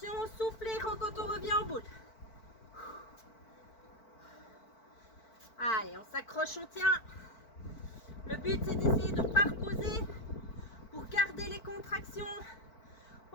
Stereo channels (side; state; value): right; late; 4.5 ms